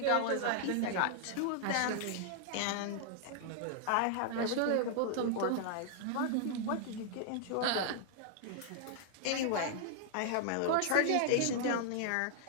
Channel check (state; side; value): different; both; correlation 0.00